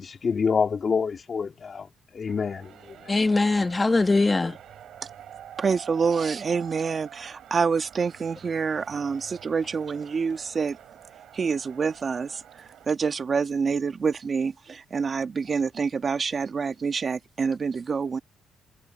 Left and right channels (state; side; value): normal; both; correlation 0.88